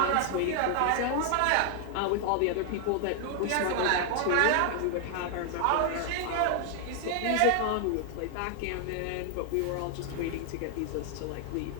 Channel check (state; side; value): different; both; correlation 0.00